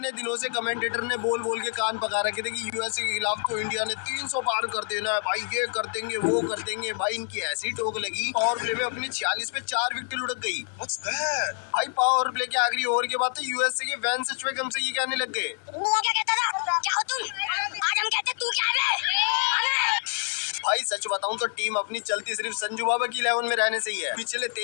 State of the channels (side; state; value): right; silent; 60 dB below the other